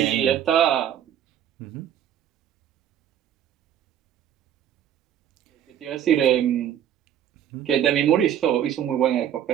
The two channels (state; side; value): quieter; left; 10.1 dB